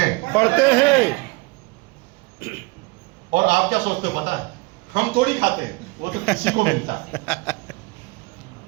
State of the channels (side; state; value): left; quieter; 25.6 dB